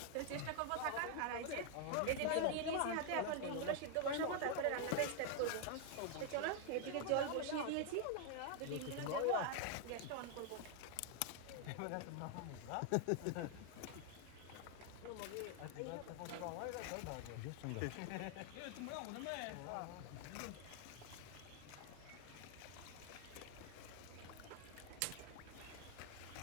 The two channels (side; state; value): both; different; correlation 0.00